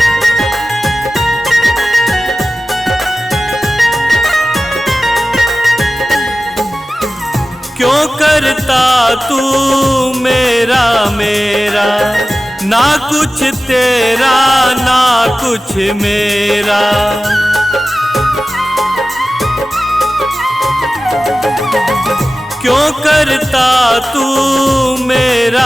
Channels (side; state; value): both; normal; correlation 0.96